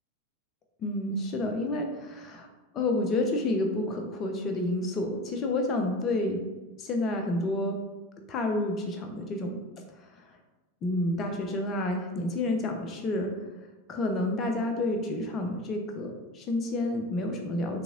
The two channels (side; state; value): both; normal; correlation 0.34